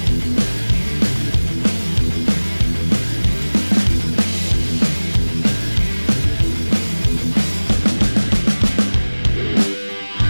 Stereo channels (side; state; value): both; inverted; correlation -1.00